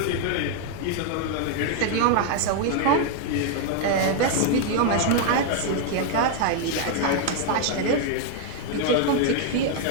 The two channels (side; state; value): both; different; correlation 0.00